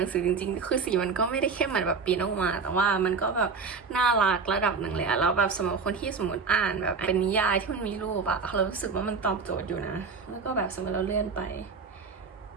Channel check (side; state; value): left; quieter; 5.0 dB